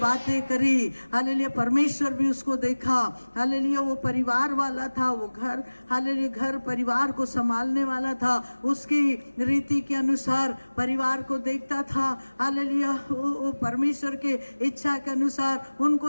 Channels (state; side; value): inverted; both; correlation -1.00